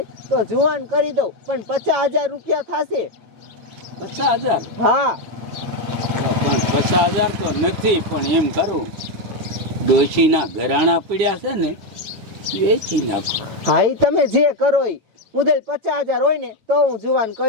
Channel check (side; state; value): left; late; 8.9 ms